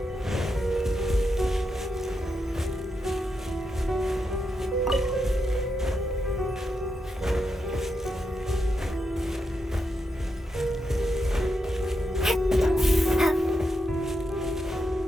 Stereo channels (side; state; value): both; normal; correlation 0.85